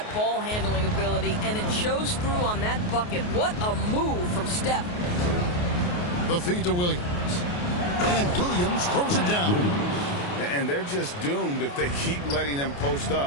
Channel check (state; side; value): late; right; 28 ms